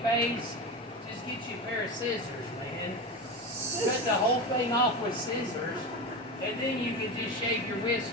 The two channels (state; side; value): normal; both; correlation 0.23